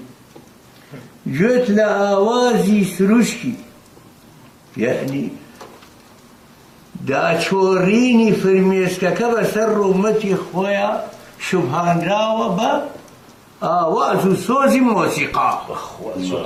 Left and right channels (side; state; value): both; identical; correlation 1.00